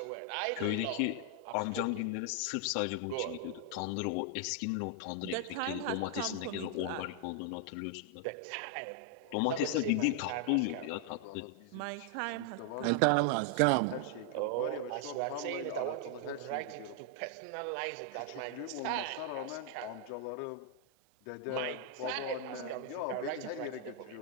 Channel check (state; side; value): different; both; correlation 0.00